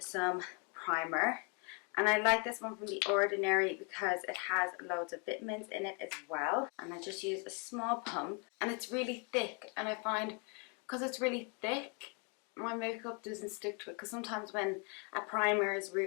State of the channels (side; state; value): right; quieter; 35.7 dB